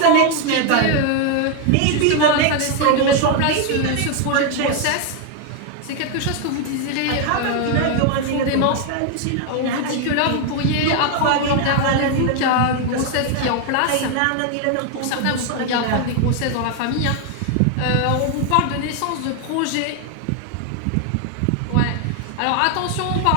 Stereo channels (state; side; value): different; both; correlation 0.01